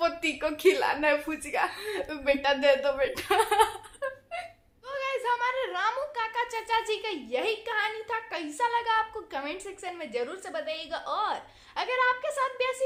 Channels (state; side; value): identical; both; correlation 1.00